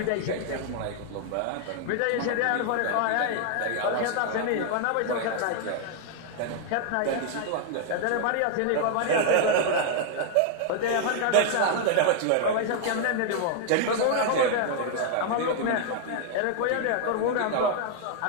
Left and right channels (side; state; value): both; different; correlation 0.00